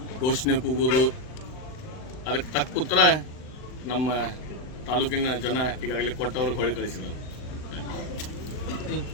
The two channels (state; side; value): late; right; 39 ms